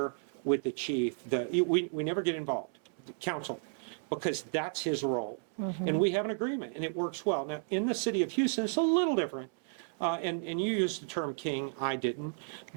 with the chief. We never get involved, the council, because that's his role. And we have an agreement and it works well. Now, in the city of Houston, it's a little different. And you used the term king, I didn't.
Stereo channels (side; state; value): left; silent; 56 dB below the other